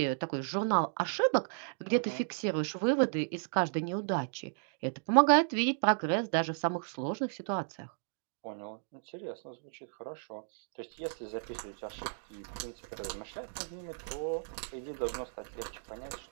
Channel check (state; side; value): silent; left; digital silence